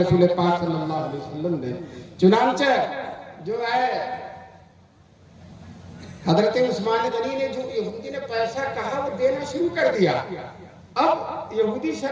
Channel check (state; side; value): identical; both; correlation 1.00